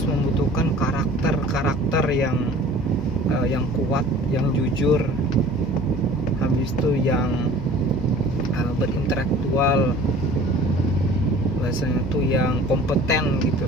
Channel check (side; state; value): both; normal; correlation 0.46